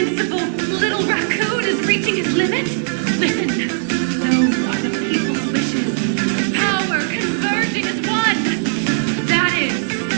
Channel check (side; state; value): left; silent; digital silence